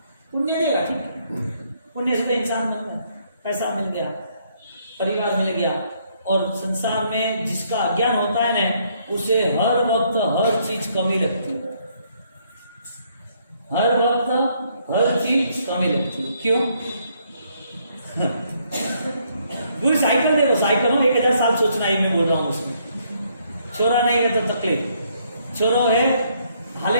पुण्य देगा, ठीक है, पुण्य से तो इंसान बन गया, पैसा मिल गया, परिवार मिल गया, और संसार में जिसका अज्ञान होता है ना, उसे हर वक्त हर चीज कमी लगती है, हर वक्त हर चीज कमी लगती है। क्यों? पूरी साइकिल देखो, साइकिल हो 1000 साल सोचना ही मैं बोल रहा हूँ उसमें। छोरा नहीं है तो तकलीफ, छोरो है हाले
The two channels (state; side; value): inverted; both; correlation -0.70